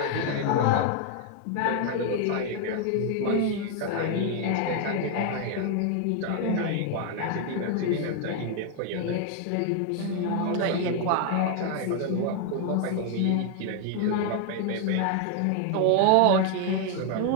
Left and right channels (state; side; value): different; both; correlation 0.00